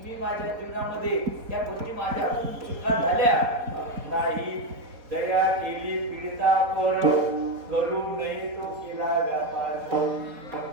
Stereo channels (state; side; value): late; left; 4.2 ms